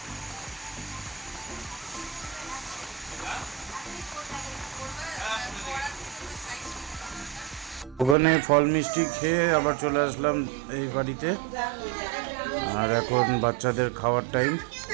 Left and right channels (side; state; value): left; drops out; at 8.2 s